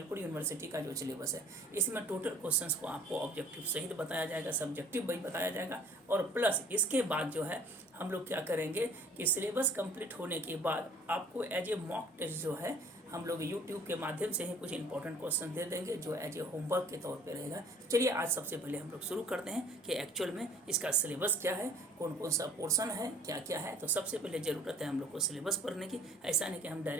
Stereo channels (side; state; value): both; normal; correlation 0.52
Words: यूनिवर्सिटी का जो सिलेबस है इसमें टोटल क्वेश्चंस को आपको ऑब्जेक्टिव सहित बताया जाएगा, सब्जेक्टिव भी बताया जाएगा। और प्लस इसके बाद जो है हम लोग क्या करेंगे कि सिलेबस कंप्लीट होने के बाद आपको एज ए मॉक टेस्ट जो है हम लोग YouTube के माध्यम से ही कुछ इंपॉर्टेंट क्वेश्चन दे देंगे जो एज ए होमवर्क के तौर पे रहेगा। चलिए आज सबसे पहले हम लोग शुरू करते हैं कि एक्चुअल में इसका सिलेबस क्या है, कौन कौन सा पोर्शन है, क्या क्या है। तो सबसे पहले ज़रूरत है हम लोग को सिलेबस पढ़ने की। ऐसा नहीं कि हम